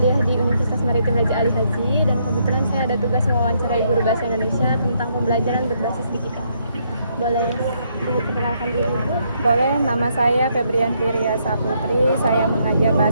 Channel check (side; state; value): both; inverted; correlation -0.73